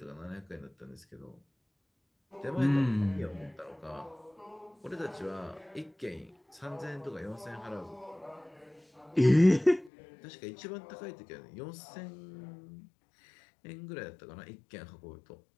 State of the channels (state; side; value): drops out; right; at 9.9 s